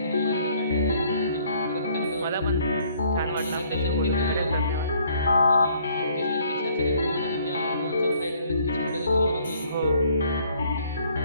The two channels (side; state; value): both; inverted; correlation -0.62